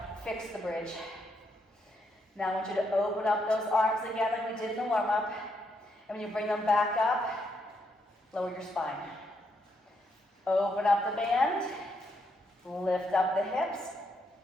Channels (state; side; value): normal; both; correlation 0.77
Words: Fix the bridge. Now I want you to open up those arms again like we did in the warm-up. And when you bring them back up, lower your spine. Open up the band, lift up the hips,